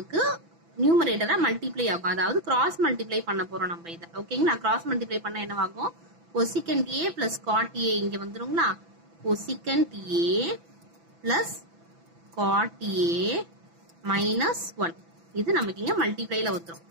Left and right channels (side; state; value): left; late; 6.0 ms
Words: நியூமரேட்டரா மல்டிப்ளை ஆகும். அதாவது கிராஸ் மல்டிப்ளை பண்ண போறோம் நம்ம இதை. ஓகேங்களா? கிராஸ் மல்டிப்ளை பண்ண என்னவாகும்? cosecant a plus cot a இங்க வந்துருங்களா? cosecant a plus cot a minus 1 இது நமக்கு இங்க மல்டிப்ளைல வந்துரும்.